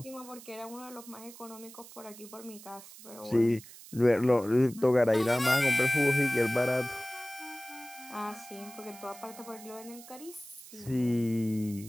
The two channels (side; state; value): right; noise; hiss, 17 dB below the sound